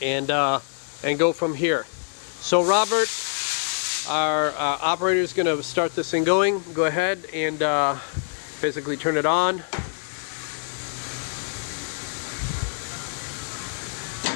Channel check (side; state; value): right; silent; digital silence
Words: and go from here. So Robert, our operator, is going to start this thing going. Go ahead and basically turn it on.